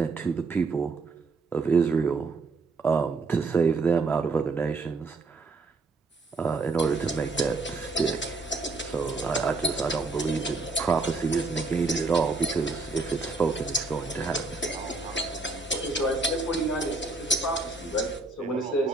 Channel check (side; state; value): left; quieter; 3.6 dB